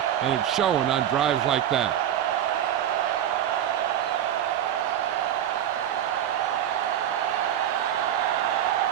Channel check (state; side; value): quieter; left; 10.6 dB